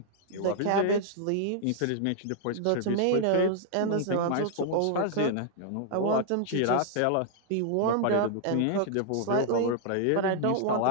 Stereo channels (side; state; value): both; different; correlation -0.01